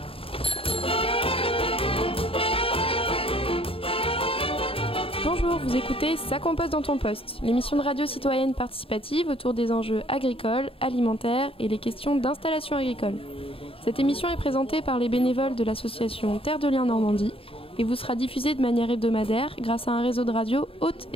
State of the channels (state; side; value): late; right; 0.27 ms